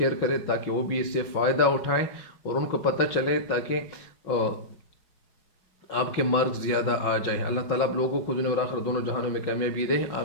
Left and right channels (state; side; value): late; right; 5.4 ms